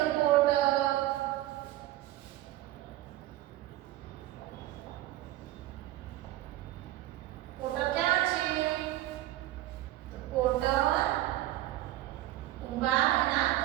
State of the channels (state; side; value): quieter; left; 15.6 dB